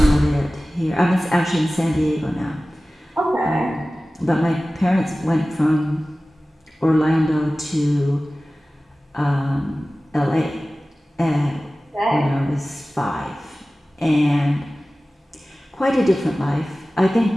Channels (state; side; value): normal; both; correlation 0.97